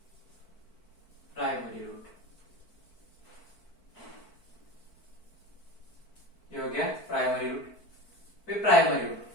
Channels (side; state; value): right; late; 4.5 ms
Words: प्राइमरी रूट ये हो गया प्राइमरी रूट। फिर प्राइमरी रूट